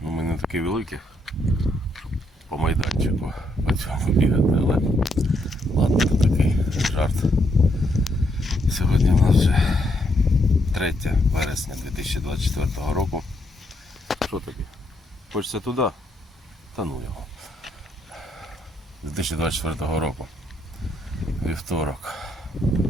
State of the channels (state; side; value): normal; both; correlation 0.75